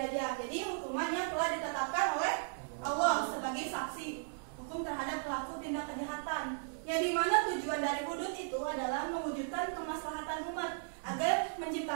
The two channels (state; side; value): silent; left; digital silence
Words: Jadi hukuman yang telah ditetapkan oleh Allah sebagai saksi hukum terhadap pelaku tindak kejahatan. Yang dimana tujuan dari hudud itu adalah mewujudkan kemaslahatan umat agar